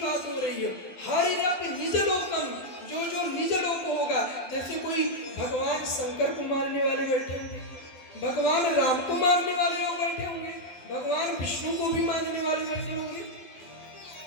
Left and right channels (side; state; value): right; late; 12 ms